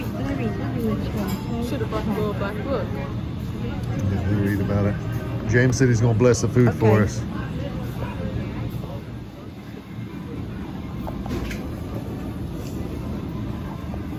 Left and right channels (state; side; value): identical; both; correlation 1.00